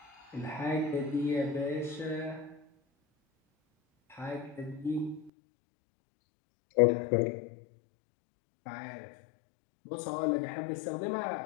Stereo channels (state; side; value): drops out; right; at 5.3 s